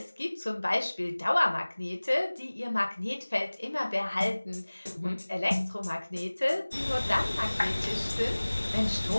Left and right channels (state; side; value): inverted; both; correlation -1.00